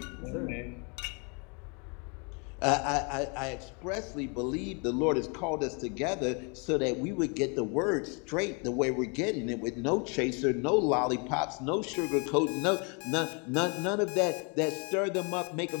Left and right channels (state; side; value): quieter; right; 34.2 dB